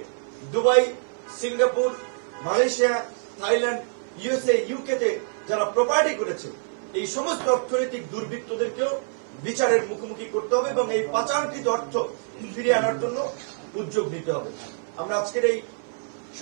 Dubai, Singapore, Malaysia, Thailand, USA, ইউকেতে যারা প্রপার্টি করেছে, এই সমস্ত অর্থনৈতিক দুর্বৃত্তদেরকেও বিচারের মুখোমুখি করতে হবে এবং এই পাচারকৃত অর্থ ফিরিয়ে আনার জন্য উদ্যোগ নিতে হবে। আমরা আজকের এই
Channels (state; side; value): silent; left; 61 dB below the other